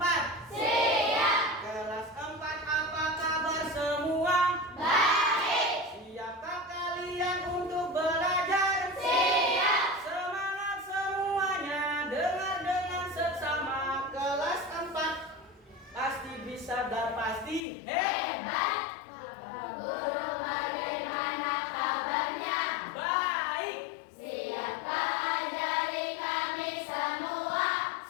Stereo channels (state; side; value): drops out; right; at 17.6 s